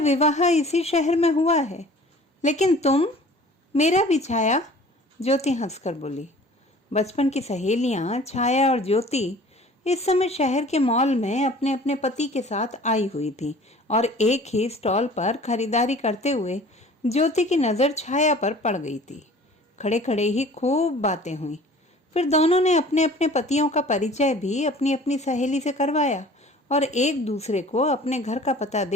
इसी शहर में हुआ है। लेकिन तुम? मेरा भी छाया, ज्योति हंसकर बोली। बचपन की सहेलियां छाया और ज्योति इस समय शहर के मॉल में अपने अपने पति के साथ आई हुई थी और एक ही स्टॉल पर खरीदारी करते हुए ज्योति की नज़र छाया पर पड़ गई थी। खड़े खड़े ही खूब बातें हुई। फिर दोनों ने अपने अपने पतियों का परिचय भी अपनी अपनी सहेली से करवाया और एक दूसरे को अपने घर का पता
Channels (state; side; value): normal; both; correlation 0.47